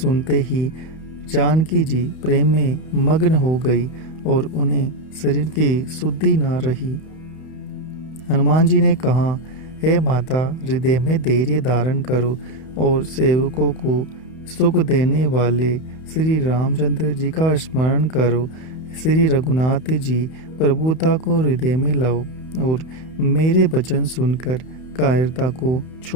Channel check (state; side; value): late; right; 31 ms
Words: ही जानकी जी प्रेम में मग्न हो गई और उन्हें शरीर की शुद्धि न रही। हनुमान जी ने कहा, हे माता, हृदय में धैर्य धारण करो और सेवकों को सुख देने वाले श्री रामचंद्र जी का स्मरण करो। श्री रघुनाथ जी प्रभुता को हृदय में लाओ और मेरे वचन सुनकर कायरता को